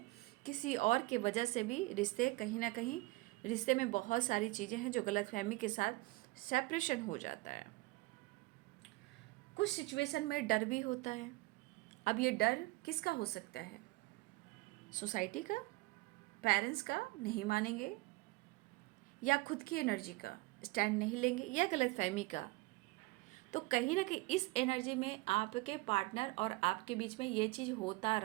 किसी और के वजह से भी रिश्ते, कहीं ना कहीं रिश्ते में बहुत सारी चीज़ें हैं जो गलतफहमी के साथ सेपरेशन हो जाता है। कुछ सिचुएशन में डर भी होता है। अब ये डर किसका हो सकता है? सोसाइटी का, पेरेंट्स का, नहीं मानेंगे, या खुद की एनर्जी का स्टैंड नहीं लेंगे, या गलतफहमी का। तो कहीं ना कहीं इस एनर्जी में आपके पार्टनर और आपके बीच में ये चीज़ होता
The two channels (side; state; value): left; quieter; 22.1 dB